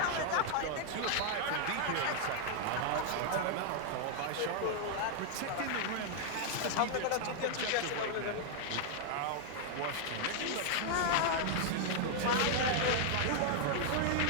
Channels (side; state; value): both; different; correlation 0.00